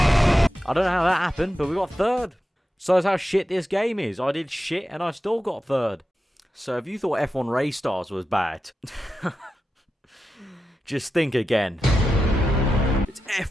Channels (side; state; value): both; normal; correlation 0.91